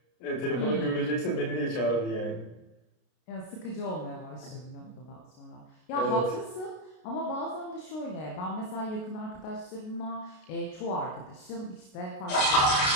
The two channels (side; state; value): right; late; 32 ms